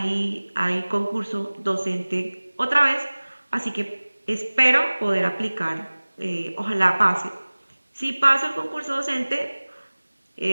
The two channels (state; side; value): inverted; both; correlation -1.00